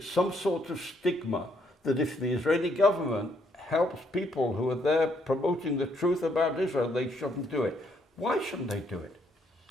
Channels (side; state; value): both; normal; correlation 0.71